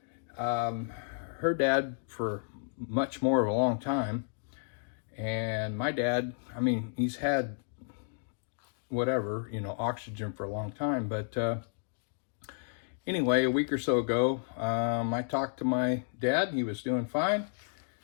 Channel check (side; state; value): right; silent; digital silence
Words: Her dad for much more of a long time, and my dad, I mean, he's had whatever, you know, oxygen for a long time, but anyway, a week or so ago, I talked to my dad. He was doing fine,